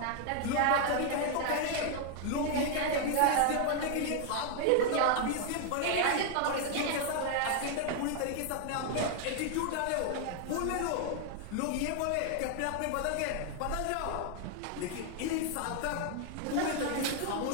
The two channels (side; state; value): both; different; correlation 0.00